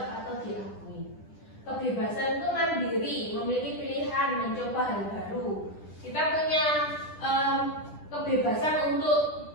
atau diakui. Kebebasan itu mandiri, memiliki pilihan, mencoba hal baru. Kita punya kebebasan untuk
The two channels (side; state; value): right; late; 10 ms